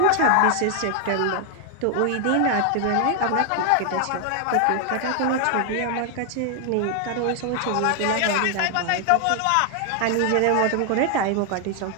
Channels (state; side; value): different; both; correlation 0.00